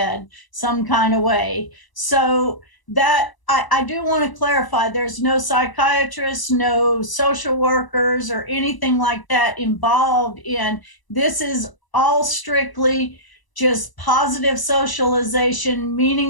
some kind of way. So that I do want to clarify, there's no psychiatrists, no social workers or anything like that involved in this. Is all strictly just positive socialization,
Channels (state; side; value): late; right; 1.0 ms